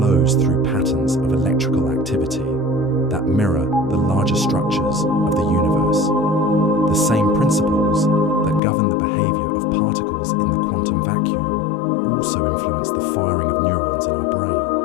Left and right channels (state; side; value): drops out; right; at 8.6 s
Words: through patterns of electrical activity that mirror the larger structures of the universe. The same principles that govern the behavior of particles in the quantum vacuum also influence the firing of neurons in our